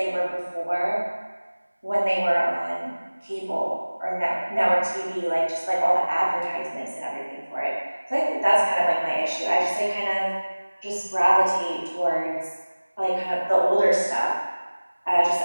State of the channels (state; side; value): inverted; both; correlation -1.00